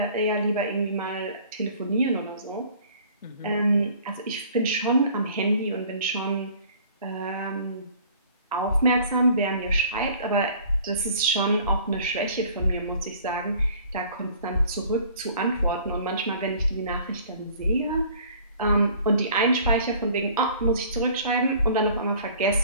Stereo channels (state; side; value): inverted; both; correlation -0.51